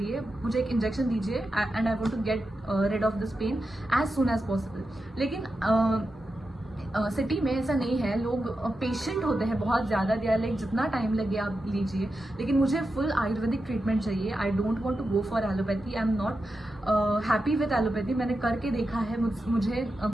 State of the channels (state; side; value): normal; both; correlation 0.90